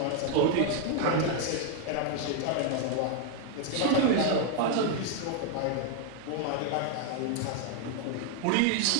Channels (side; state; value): both; different; correlation 0.01